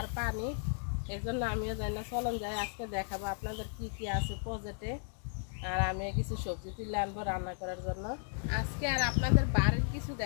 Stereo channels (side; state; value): right; silent; digital silence